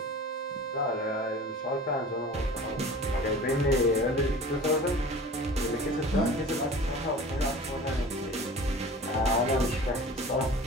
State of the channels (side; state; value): both; normal; correlation 0.40